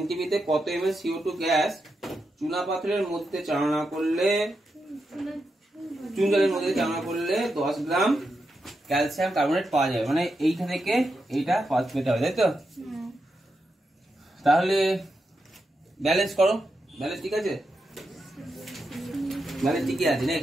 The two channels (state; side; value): normal; both; correlation 0.86